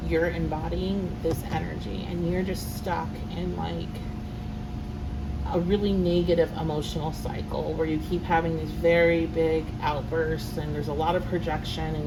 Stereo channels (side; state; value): both; identical; correlation 1.00